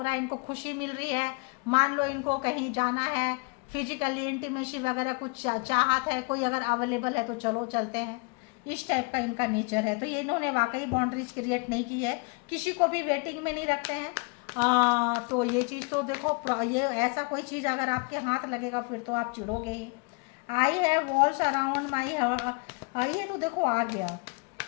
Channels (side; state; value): right; quieter; 31.5 dB